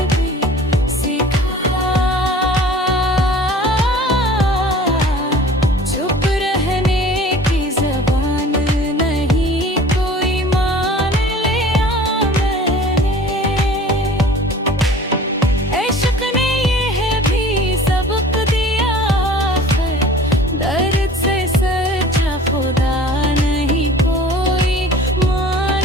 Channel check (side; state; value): both; normal; correlation 0.45